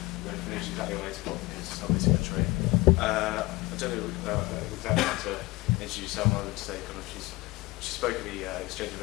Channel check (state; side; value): quieter; right; 21.2 dB